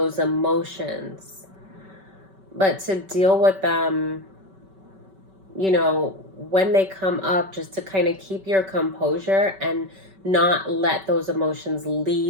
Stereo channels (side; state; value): left; late; 5.2 ms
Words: emotions, but to deal with them, when they come up, just to kind of keep your composure and not let those emotions